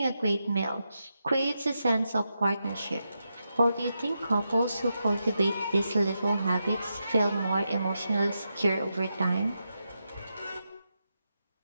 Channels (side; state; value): both; inverted; correlation -0.86